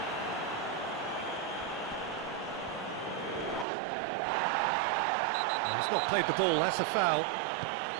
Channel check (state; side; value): drops out; left; at 3.7 s